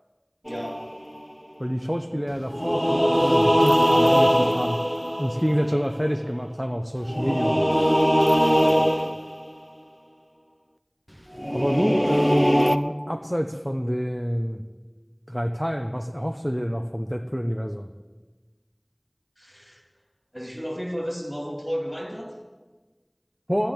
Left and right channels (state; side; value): identical; both; correlation 1.00